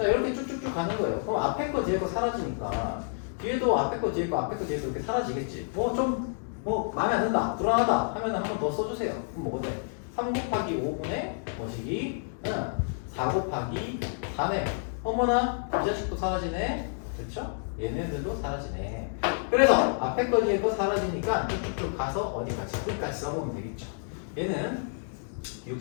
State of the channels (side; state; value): right; silent; digital silence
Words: 이렇게 쭉쭉쭉 가는 거예요. 그럼 앞에 거 뒤에 거 사라지니까 뒤에도 앞에 거 뒤에 거 앞에 거 뒤에 거 이렇게 사라지겠지. 마음에 안 든다, 불안하다 하면 한 번 더 써주세요. 그럼 뭐가 돼? 3 곱하기 5분의 뭐시기? 4 곱하기 4네. 어머나, 이 자식도 사라지네. 그렇죠? 얘네들도 사라지네. 그래서 앞에 거 뒤에 거 사라지니까 쭉쭉쭉 가서 어디까지? 끝까지 써보면 되겠죠. 얘는